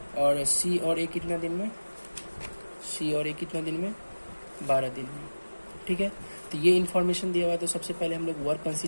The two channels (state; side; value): inverted; both; correlation -1.00